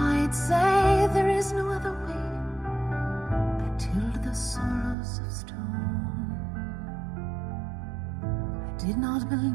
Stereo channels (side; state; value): left; drops out; at 5.0 s